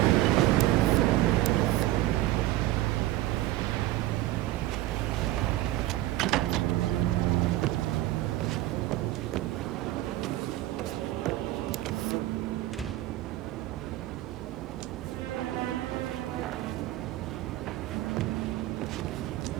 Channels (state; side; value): quieter; left; 15.8 dB